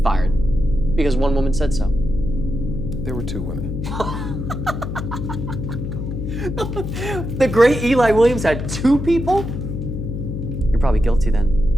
fired because one woman said so. There were two women. The great Eli Williams had two people? You're probably guilty then.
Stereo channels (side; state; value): left; noise; hum, 5 dB below the sound